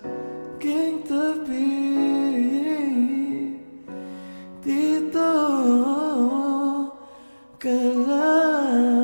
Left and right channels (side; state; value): both; inverted; correlation -1.00